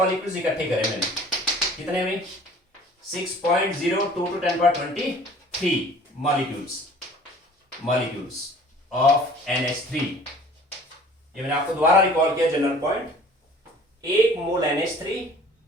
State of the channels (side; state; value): both; normal; correlation 0.49